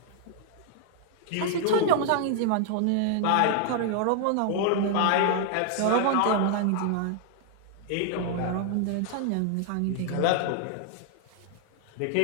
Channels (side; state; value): both; different; correlation 0.00